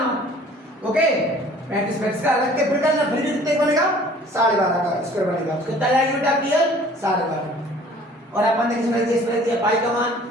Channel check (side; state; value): both; normal; correlation 0.52